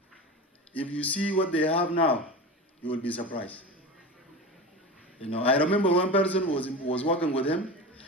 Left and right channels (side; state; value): both; normal; correlation 0.27